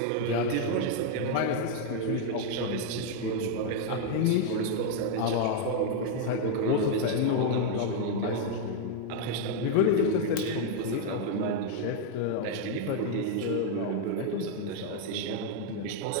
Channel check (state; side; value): different; both; correlation 0.00